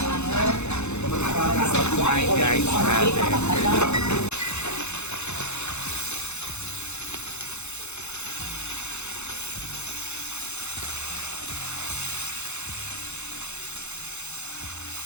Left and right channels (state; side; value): late; right; 0.82 ms